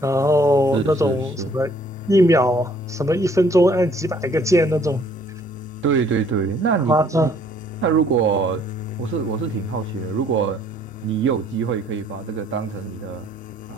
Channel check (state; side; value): normal; both; correlation 0.62